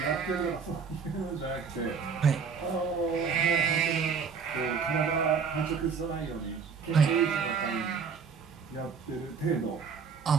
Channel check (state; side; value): quieter; left; 5.8 dB